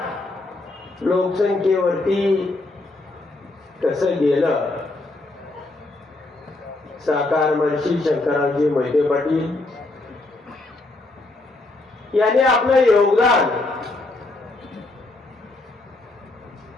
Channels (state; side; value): quieter; right; 3.0 dB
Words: लोकसंख्येवरती कसं गेलं? साकार महर्षी शंकररावजी मोहिते पाटील यांनी आपलं योगदान,